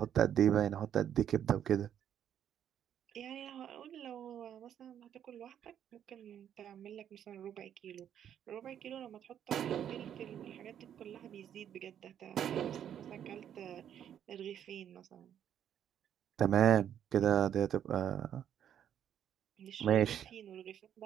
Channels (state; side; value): quieter; left; 9.7 dB